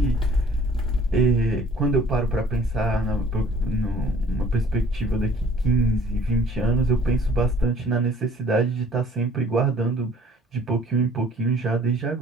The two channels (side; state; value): both; normal; correlation 0.54